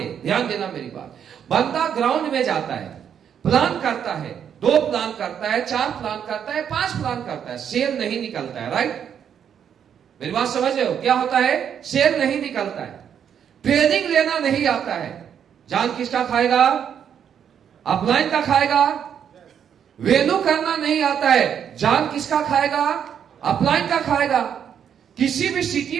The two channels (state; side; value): quieter; left; 8.5 dB